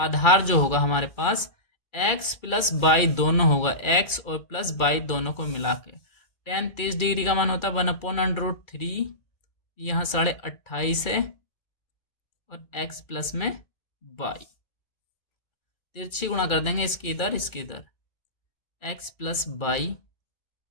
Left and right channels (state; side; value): late; right; 2.3 ms